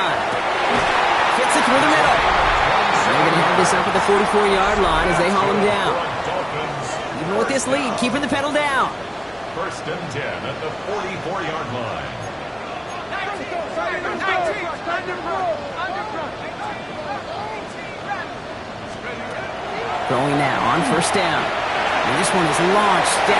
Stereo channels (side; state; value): both; identical; correlation 1.00